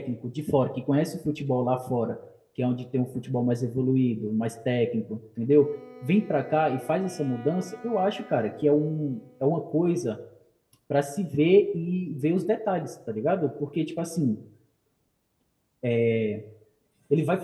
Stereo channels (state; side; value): identical; both; correlation 1.00